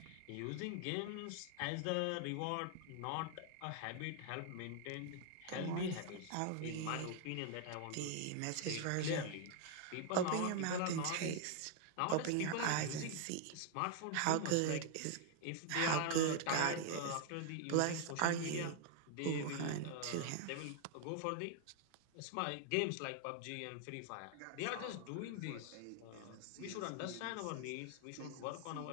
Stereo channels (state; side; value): different; both; correlation 0.00